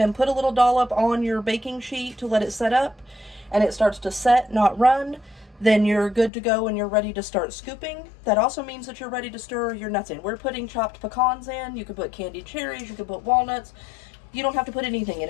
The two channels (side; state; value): right; drops out; at 6.3 s